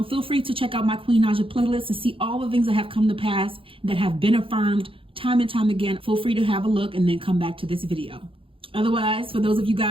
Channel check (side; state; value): left; late; 0.26 ms